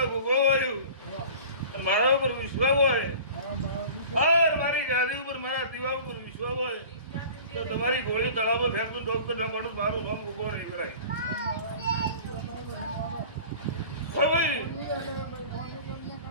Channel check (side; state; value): both; inverted; correlation -0.41